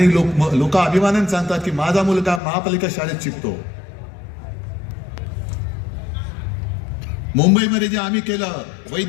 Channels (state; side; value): drops out; right; at 2.4 s